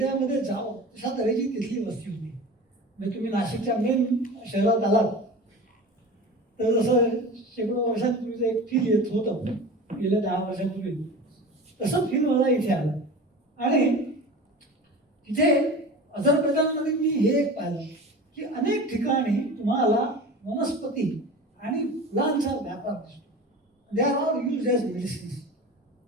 जावं अशा तऱ्हेची तिथली वस्ती होती. म्हणजे तुम्ही नाशिकच्या मेन शहरात आलात तर जसं शेकडो वर्षांपूर्वीचं एक फील येत होतं गेल्या 10 वर्षांपूर्वी, तसं फील मला इथे आलं. आणि तिथे अझरबैजानमध्ये मी हे एक पाहिलं की अनेक ठिकाणी तुम्हाला वनस्पती आणि फुलांचा व्यापार दिसतो. They are all use as medicines.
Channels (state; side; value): normal; both; correlation 0.35